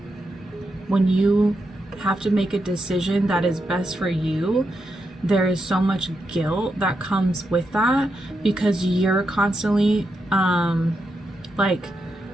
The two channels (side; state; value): both; normal; correlation 0.84